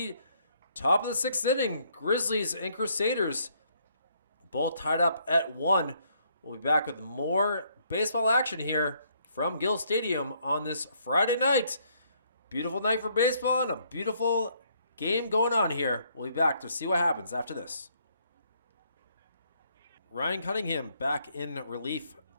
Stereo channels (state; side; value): inverted; both; correlation -0.69